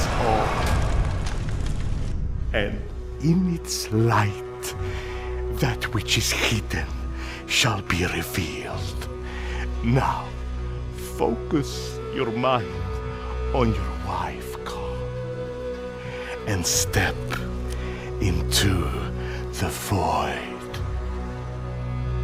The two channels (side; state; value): both; identical; correlation 1.00